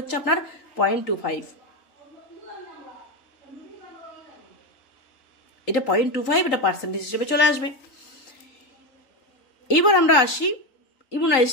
আপনার 0.25, এটা 0.25, এটা পার্সেন্টেজ হিসেবে চলে আসবে। এবার আমরা আসি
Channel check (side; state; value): right; late; 3.9 ms